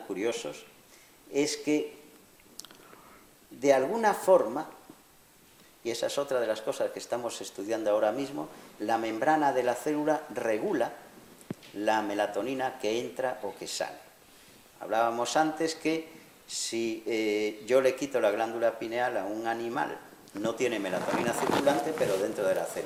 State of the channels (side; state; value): both; identical; correlation 1.00